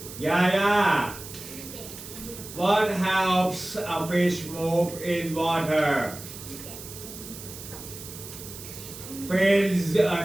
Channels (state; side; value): noise; right; hiss, 13 dB below the sound